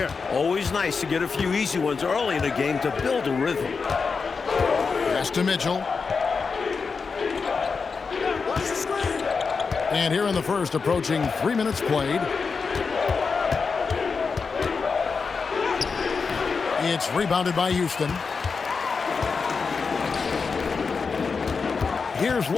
Always nice to get a few easy ones early in the game to build a rhythm. Pass to Mitchell. And here in the first, approaching 3 minutes played. It's rebounded by Houston. Here's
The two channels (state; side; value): quieter; right; 5.0 dB